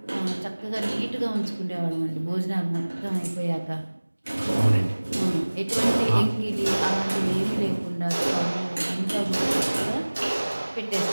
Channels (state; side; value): inverted; both; correlation -1.00